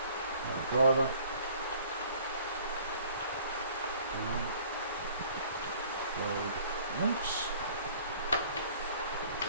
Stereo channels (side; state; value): both; inverted; correlation -0.53